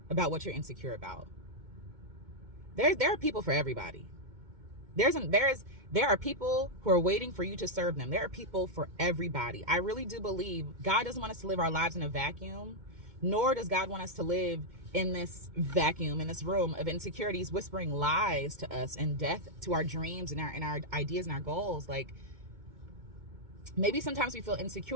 about what you're insecure about. There are people for everybody. There are people who are waiting for you to serve them. There are people for everybody. I really do believe God doesn't want us to live our lives in a vacuum, nor does God want us to live in this vacuum, in this room of insecurities, whispering lies to us and death to our dreams and our ideas and our goals. Like, maybe sometimes we feel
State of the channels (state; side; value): late; left; 2.2 ms